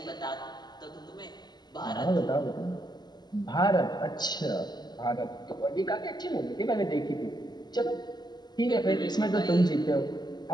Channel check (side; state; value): right; late; 0.20 ms